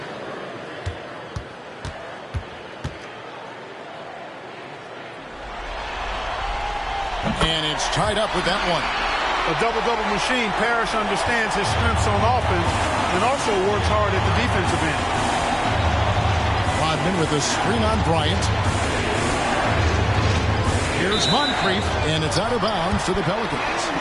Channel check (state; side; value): identical; both; correlation 1.00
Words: And it's tied up with that one. A double-double machine. Parrish understands his strengths on offense and also works hard at the defensive end. Rodman with a screen on Bryant. Here's Moncrief, and it's out of bounds to the Pelicans.